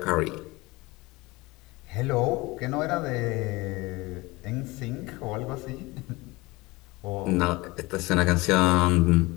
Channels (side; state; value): right; quieter; 22.6 dB